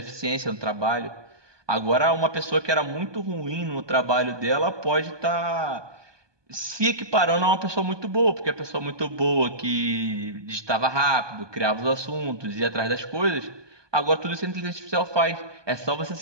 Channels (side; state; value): left; late; 1.2 ms